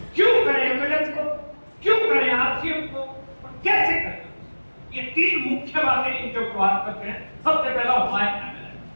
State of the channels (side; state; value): both; inverted; correlation -1.00